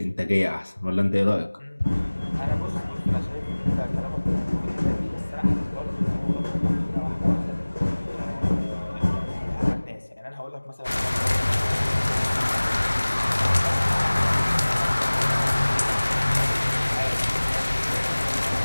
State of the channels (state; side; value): inverted; both; correlation -1.00